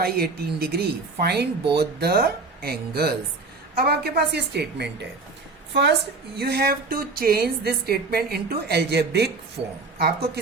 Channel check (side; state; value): left; quieter; 3.9 dB